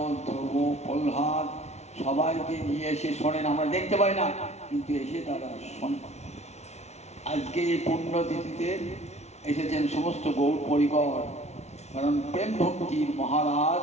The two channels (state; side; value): late; right; 0.32 ms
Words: ধ্রুব, প্রহ্লাদ সবাইকে নিয়ে এসে শোনেন। আমরা দেখতে পাই না, কিন্তু এসে তারা শোনেন। আজকে এই পুণ্যতিথিতে এসেছেন সমস্ত গৌর পরিকর, কারণ প্রেম ভক্তির